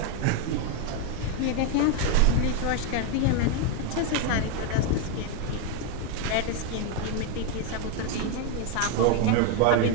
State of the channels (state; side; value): different; both; correlation 0.01